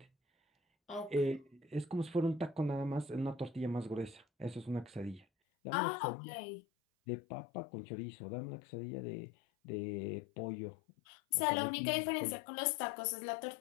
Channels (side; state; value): right; drops out; at 5.2 s